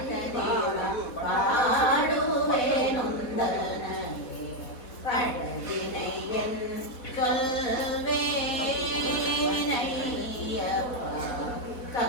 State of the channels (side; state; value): right; late; 4.1 ms